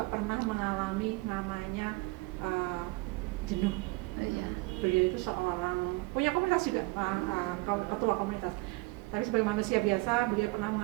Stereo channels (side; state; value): left; quieter; 23.4 dB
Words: pernah mengalami namanya jenuh. Beliau itu seorang punya komunitas juga, ketua komunitas. Tapi sebagai manusia biasa, beliau pernah